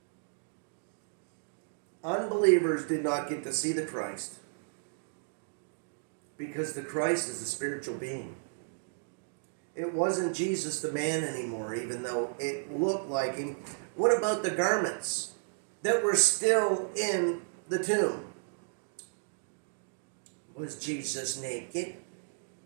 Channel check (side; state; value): left; silent; digital silence